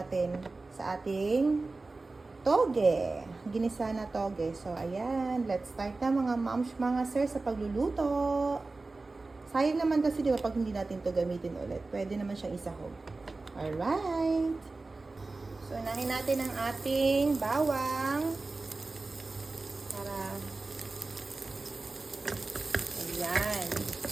sa ating toge. Ginisa na toge. So, ayan. Let's start na mga moms, mga sir sa pagluluto. Sayang naman kasi diba pag hindi natin to gamitin ulit. Pwede naman siyang isahog. Alright. So, unahin natin ang ating bawang. Para, ayan.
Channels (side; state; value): left; quieter; 3.5 dB